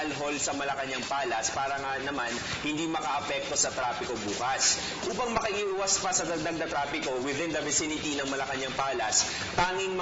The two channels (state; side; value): identical; both; correlation 1.00